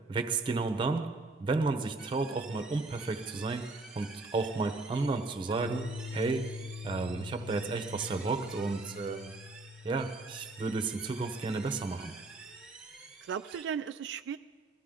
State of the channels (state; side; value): quieter; left; 3.2 dB